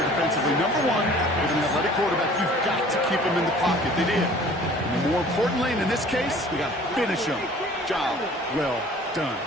defensively. Number one, with an athletic quarterback, you've got to keep him in the pocket. They did. And more importantly, and in this case, we got to finish him. Job well done.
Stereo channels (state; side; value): normal; both; correlation 0.49